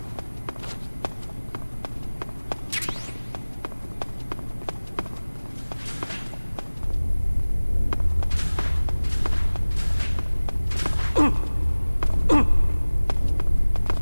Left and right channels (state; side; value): inverted; both; correlation -1.00